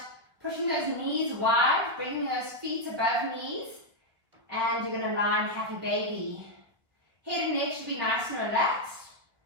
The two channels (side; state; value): left; late; 1.5 ms